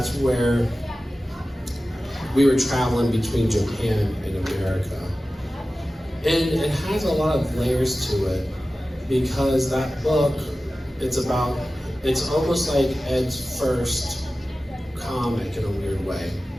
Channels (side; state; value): both; normal; correlation 0.95